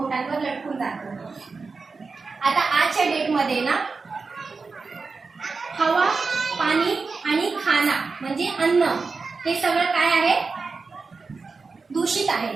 लटकून जातो. आता आजच्या डेटमध्ये ना हवा, पाणी आणि खाना म्हणजे अन्न, हे सगळं काय आहे? दूषित है।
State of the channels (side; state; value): left; quieter; 4.4 dB